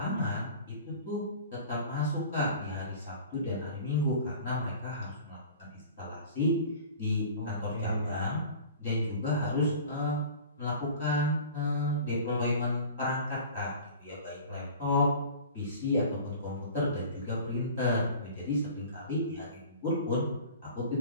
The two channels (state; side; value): inverted; both; correlation -0.41